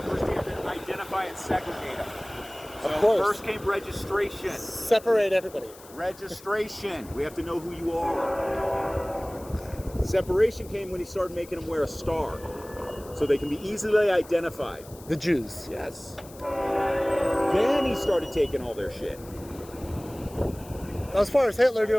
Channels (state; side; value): noise; left; hiss, 21 dB below the sound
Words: First, you have to identify and segregate them. So of course. First came registration. Separate everybody. Registration. We have to know who you are. Separation came when he started making them wear a star, so they can be easily identified. The Jews. Yes. Then he started taking all their shit. As far as Hitler